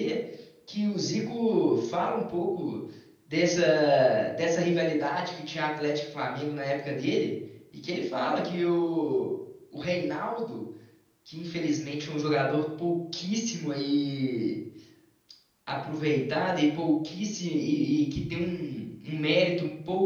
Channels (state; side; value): identical; both; correlation 1.00